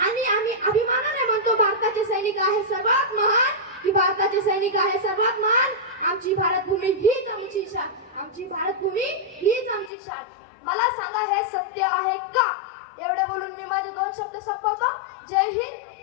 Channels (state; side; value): drops out; right; at 9.9 s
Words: आणि आम्ही अभिमानाने म्हणतो भारताचे सैनिक आहे सर्वात महान, की भारताचे सैनिक आहे सर्वात महान. आमची भारत भूमी हीच आमची शान, आमची भारत भूमी हीच आमची शान. मला सांगा, हे सत्य आहे का? एवढे बोलून मी माझे 2 शब्द संपवतो. जय